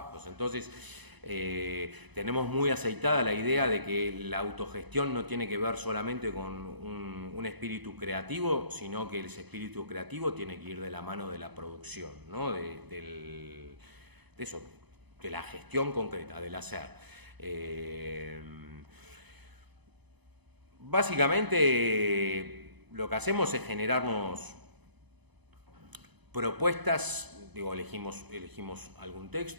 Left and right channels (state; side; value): late; left; 0.99 ms